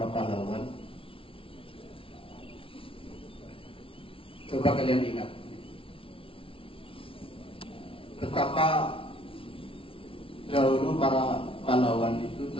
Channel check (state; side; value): late; right; 0.26 ms